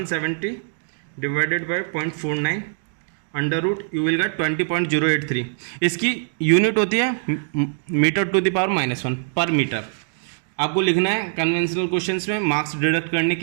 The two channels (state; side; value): silent; left; digital silence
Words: divided by 0.49 under root, you will get 20.083। इसकी यूनिट होती है मीटर टू द पावर -1 पर मीटर। आपको लिखना है कन्वेंशनल क्वेश्चंस में, मार्क्स डिडक्ट करने